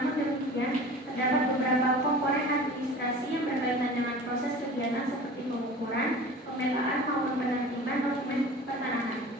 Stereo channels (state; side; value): normal; both; correlation 0.39